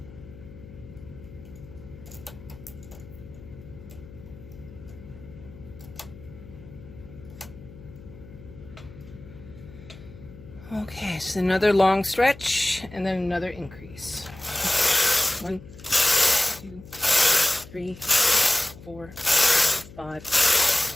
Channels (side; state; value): left; noise; hum, 18 dB below the sound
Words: Okay, so another long stretch and then another increase. 1, 2, 3, 4, 5,